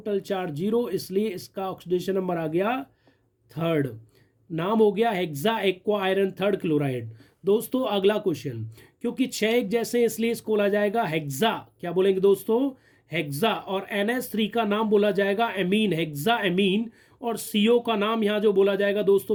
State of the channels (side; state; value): both; identical; correlation 1.00